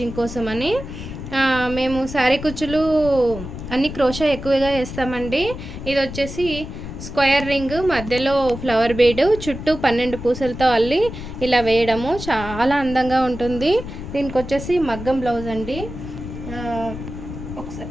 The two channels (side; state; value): left; noise; rumble, 10 dB below the sound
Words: కోసం అని. మేము శారీ కుచ్చులు అన్ని క్రోషా ఎక్కువగా వేస్తామండి. ఇది వచ్చేసి స్క్వేర్ రింగ్, మధ్యలో ఫ్లవర్ బీడ్, చుట్టూ 12 పూసలతో అల్లి ఇలా వేయడము చాలా అందంగా ఉంటుంది. దీనికి వచ్చేసి మగ్గం బ్లౌజ్ అండి.